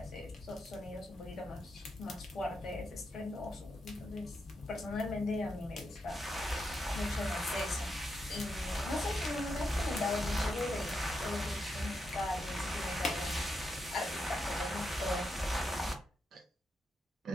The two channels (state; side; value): normal; both; correlation 0.84